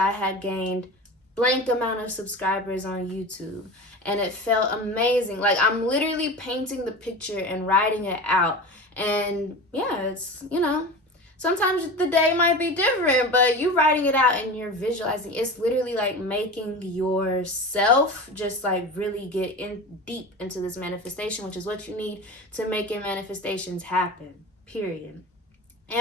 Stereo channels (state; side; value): normal; both; correlation 0.31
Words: had gained blank amount of subscribers on YouTube, and it felt amazing. Like, I'm literally painting the picture and writing it out. And yeah, it's, you know, sometimes the day might be different, but you writing it out and you're visualizing. It's literally like making yourself just like really get in deep into this manifestation, which is what you need to make your manifestations happen, period.